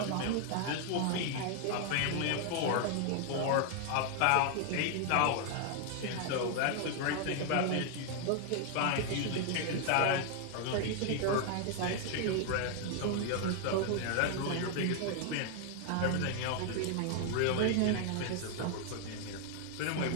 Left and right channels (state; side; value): different; both; correlation 0.00